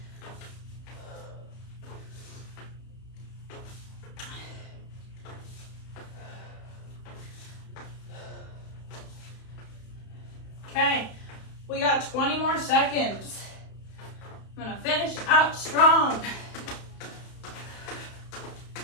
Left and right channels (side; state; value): right; late; 31 ms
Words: Okay, we got 20 more seconds. I'm gonna finish out strong.